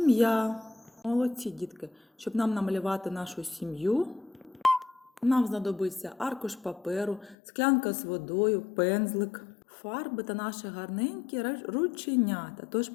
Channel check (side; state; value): right; drops out; at 7.4 s